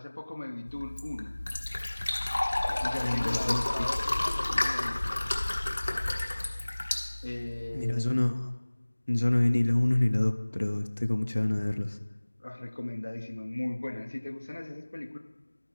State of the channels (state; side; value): inverted; both; correlation -1.00